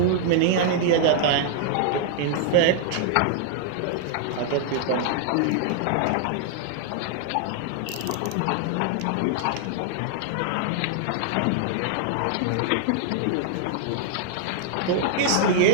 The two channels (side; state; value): both; different; correlation 0.00